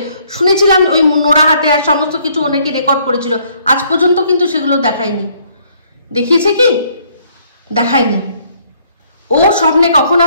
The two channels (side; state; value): both; inverted; correlation -0.65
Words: শুনেছিলাম ওই নোড়া হাতে আর সমস্ত কিছু অনেকে রেকর্ড করেছিল, আজ পর্যন্ত কিন্তু সেগুলো দেখায়নি। দেখিয়েছে কি? দেখায়নি। ও স্বপ্নে কখন